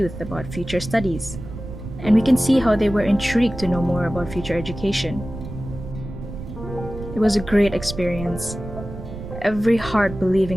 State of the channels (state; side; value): noise; right; rumble, 11 dB below the sound